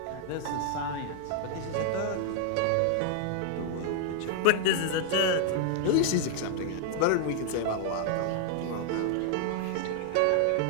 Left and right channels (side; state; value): both; different; correlation 0.00